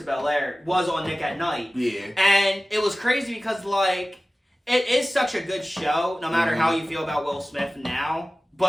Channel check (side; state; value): both; normal; correlation 0.97